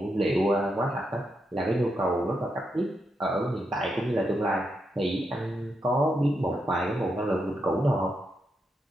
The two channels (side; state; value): both; normal; correlation 0.83